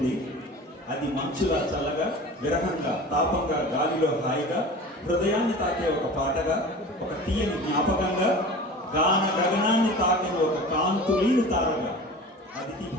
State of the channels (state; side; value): normal; both; correlation 0.37